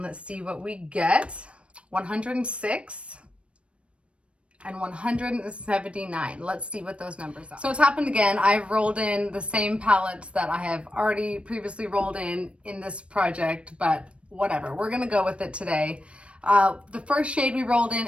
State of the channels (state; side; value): late; left; 0.060 ms